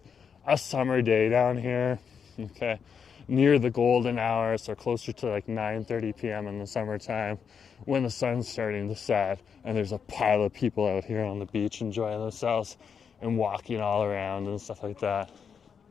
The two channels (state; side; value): quieter; right; 6.8 dB